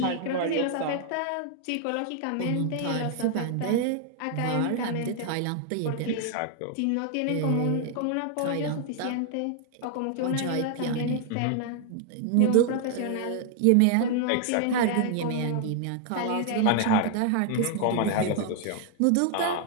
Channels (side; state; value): both; different; correlation 0.00